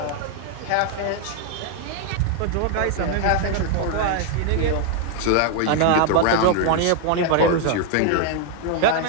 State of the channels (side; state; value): both; different; correlation 0.00